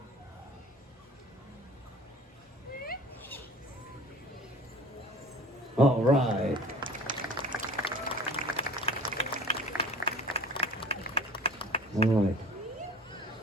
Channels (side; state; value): both; normal; correlation 0.44